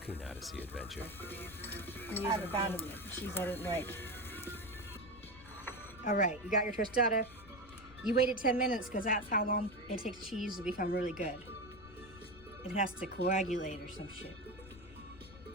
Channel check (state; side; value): noise; left; rumble, 19 dB below the sound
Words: odyssey adventure. I haven't found any cheese I didn't like. Alright, you got your tostada. You waited 10 minutes because that's how long it takes cheese to become really good. It has to coagulate or some shit.